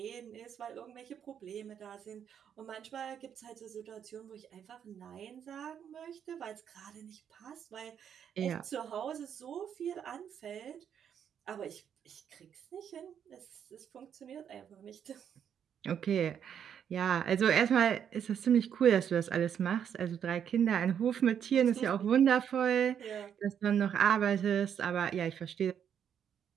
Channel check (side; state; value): left; quieter; 8.5 dB